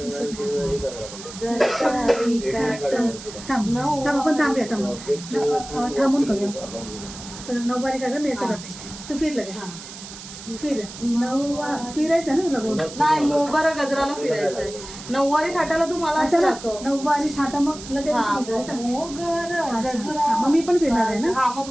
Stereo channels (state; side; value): noise; right; hiss, 13 dB below the sound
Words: थांब थांब आपण थांबूया थांबून करूया. सगळं नऊवारी काढा मी असं करते. तू फिर लगेच फिर फिरायचं ना तुला बोल. नाही मोगरा गजराला फिरायचंय. नऊवारी थाटाला तू मला असं दाखव. नऊवारी थाटा मग लगेच हा, फिरायचं. मोगरा अच्छा. गजरा. हा, मग मी पण फिरणार आहे ना. हा मग